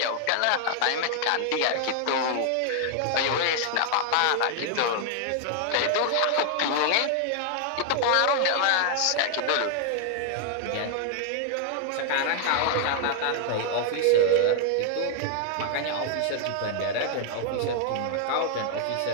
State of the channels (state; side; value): different; both; correlation 0.00